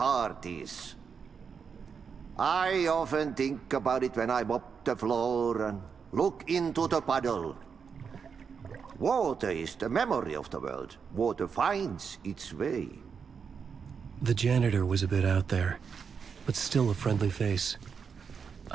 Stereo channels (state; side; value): quieter; left; 6.2 dB